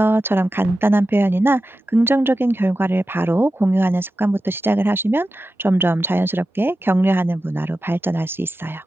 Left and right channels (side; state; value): both; normal; correlation 0.92